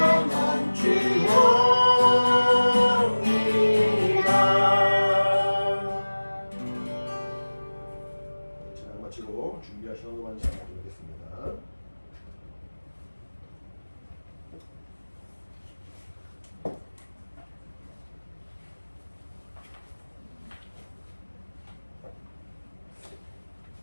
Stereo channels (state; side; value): inverted; both; correlation -1.00